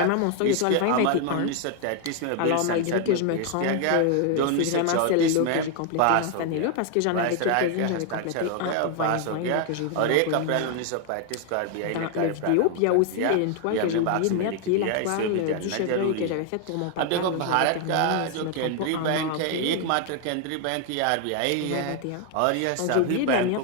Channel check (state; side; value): different; both; correlation 0.00